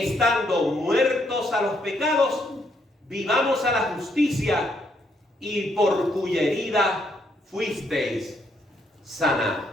muertos a los pecados, vivamos a la justicia, y por cuya herida fuisteis sanados.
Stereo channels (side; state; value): both; normal; correlation 0.74